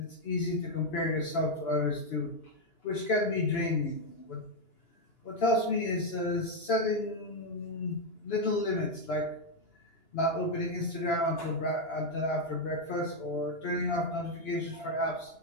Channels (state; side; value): late; right; 2.9 ms